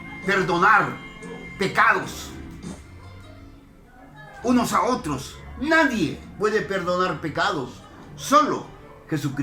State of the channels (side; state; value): both; identical; correlation 1.00